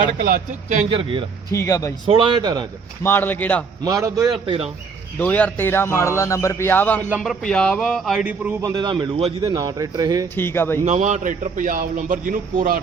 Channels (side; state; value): left; quieter; 5.1 dB